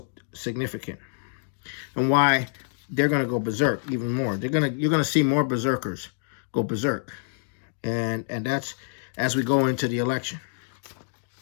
significant. And why they're going to go berserk even more. You're going to see more berserkers go berserk. And that's as we go into the election.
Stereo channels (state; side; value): silent; right; digital silence